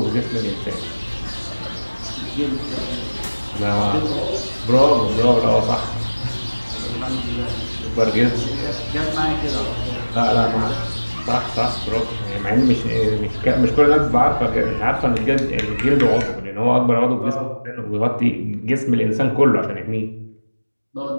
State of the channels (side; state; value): both; inverted; correlation -1.00